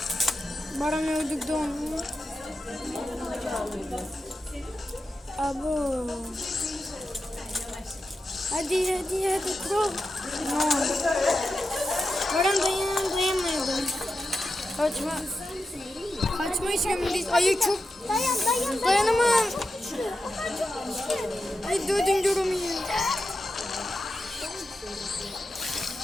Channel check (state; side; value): normal; both; correlation 0.89